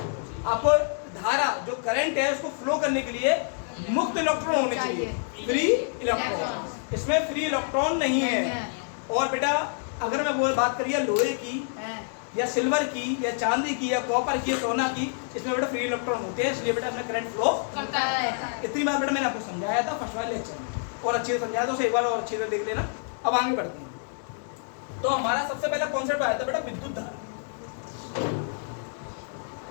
आपको धारा जो करंट है उसको फ्लो करने के लिए मुक्त इलेक्ट्रॉन होने चाहिए, फ्री इलेक्ट्रॉन। इसमें फ्री इलेक्ट्रॉन नहीं है। और बेटा अगर मैं बात करिए लोहे की या सिल्वर की या चांदी की या कॉपर की या सोना की, इसमें बेटा फ्री इलेक्ट्रॉन होते हैं, इसलिए बेटा इसमें करंट फ्लो करता है। इतनी बात बेटा मैंने आपको समझाया था फर्स्ट वाले लेक्चर में। और अच्छे से समझाया, तो उसे एक बार और अच्छे से देख लेना। अब आगे बढ़ते हैं। तो हमारा सबसे पहला कॉन्सेप्ट आया था बेटा विद्युत धारा।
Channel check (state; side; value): silent; right; 60 dB below the other